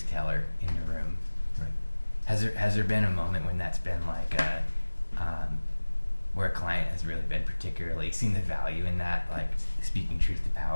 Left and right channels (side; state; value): both; inverted; correlation -1.00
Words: teller in the room. Right. Has there been a moment when that's been like where a client has really been particularly seen the value in that, like speaking truth to